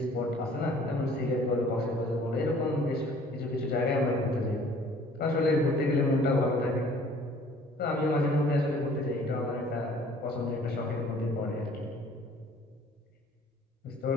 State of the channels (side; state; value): both; normal; correlation 0.54